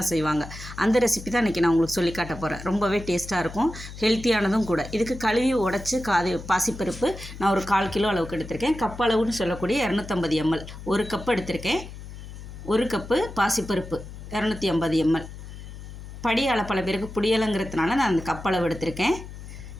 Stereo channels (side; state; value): left; noise; hum, 13 dB below the sound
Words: செய்வாங்க. அந்த ரெசிபி தான் இன்றைக்கி நான் உங்களுக்கு சொல்லி காட்ட போகிறேன். ரொம்பவே டேஸ்ட்டாக இருக்கும், ஹெல்த்தியானதும் கூட. இதுக்கு கழுவி உடச்சி பாசிப்பருப்பு நான் ஒரு 1/4 கிலோ அளவுக்கு எடுத்திருக்கேன். கப் அளவுன்னு சொல்லக்கூடிய 250 ml. 1 கப் எடுத்திருக்கேன். 1 கப்பு பாசிப்பருப்பு 250 ml. படியால் பல பேருக்கு புடியலைங்கிறதுனால நான் அந்த கப்பளவு எடுத்திருக்கேன்.